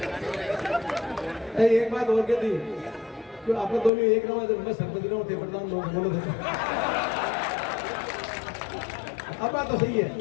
एक बात और कहती तो आप दोनों एक रहा मैं सरपंच रहा थे प्रधान लोग बोलो थे, अब बात तो सही है,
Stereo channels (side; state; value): right; drops out; at 3.9 s